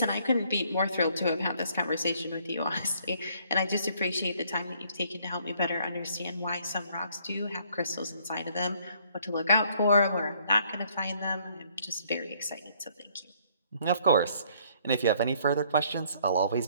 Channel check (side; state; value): both; inverted; correlation -0.64